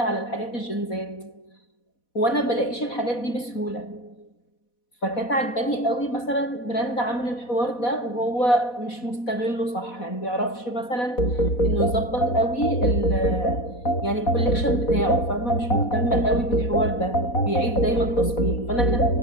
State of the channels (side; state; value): right; late; 4.1 ms